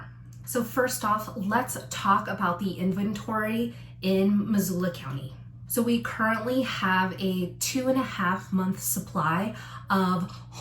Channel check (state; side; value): identical; both; correlation 1.00